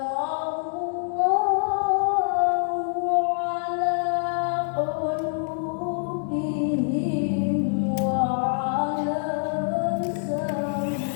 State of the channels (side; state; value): right; silent; 62 dB below the other